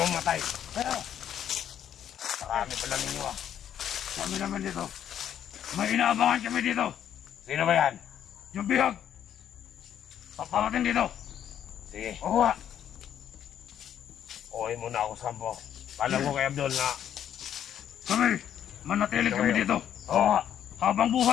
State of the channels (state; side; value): quieter; right; 9.9 dB